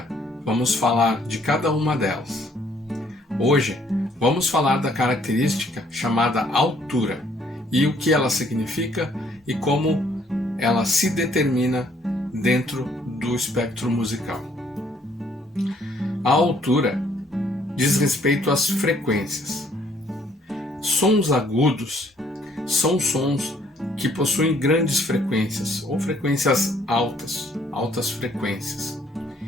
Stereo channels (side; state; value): both; normal; correlation 0.64